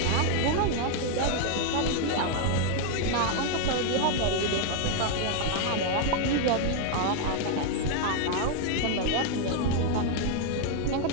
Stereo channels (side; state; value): both; different; correlation 0.01